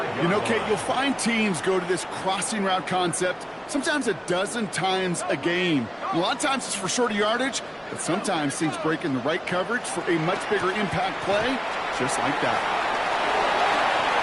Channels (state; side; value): identical; both; correlation 1.00